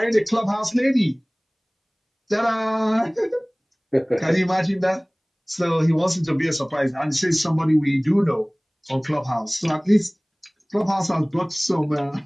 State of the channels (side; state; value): both; identical; correlation 1.00